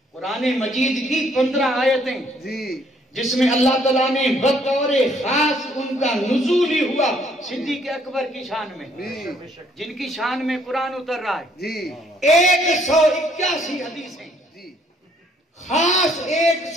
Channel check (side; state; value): both; normal; correlation 0.65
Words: قرآن مجید کی 15 آیتیں جس میں اللہ تعالیٰ نے بطور خاص ان کا نزول ہی ہوا صدیق اکبر کی شان میں، جن کی شان میں قرآن اتر رہا ہے. 181 حدیثیں خاص